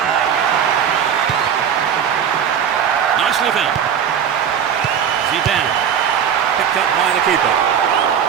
Nicely found. Zidane, picked up by the keeper.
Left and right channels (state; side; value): quieter; left; 8.2 dB